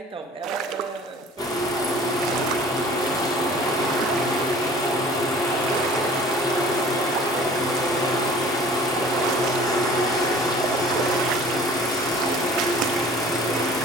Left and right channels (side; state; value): both; normal; correlation 0.47